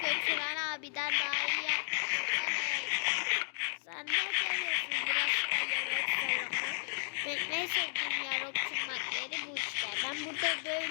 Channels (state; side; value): silent; right; digital silence